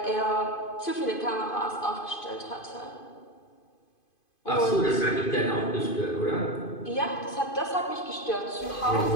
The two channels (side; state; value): right; late; 2.5 ms